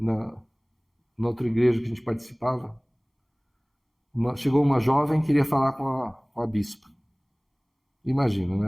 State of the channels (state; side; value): identical; both; correlation 1.00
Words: outra igreja que a gente participava, chegou uma jovem que queria falar com a bispa. Imagina, né?